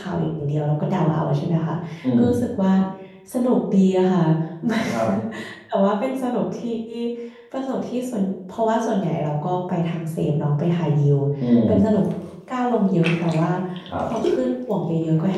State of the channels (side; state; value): both; identical; correlation 1.00